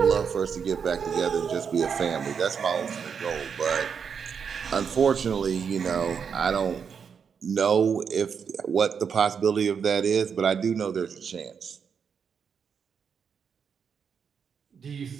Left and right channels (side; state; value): left; quieter; 6.7 dB